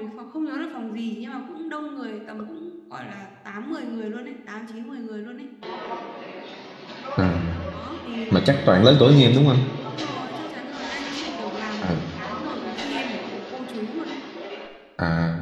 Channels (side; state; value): both; identical; correlation 1.00